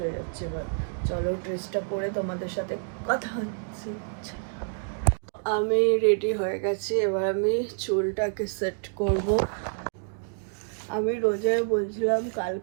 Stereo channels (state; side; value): silent; left; 59 dB below the other